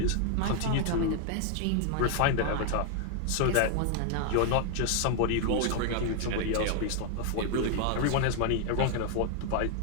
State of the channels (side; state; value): both; different; correlation 0.00